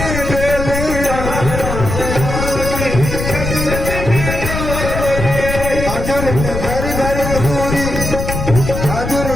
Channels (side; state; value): left; noise; rumble, 4 dB below the sound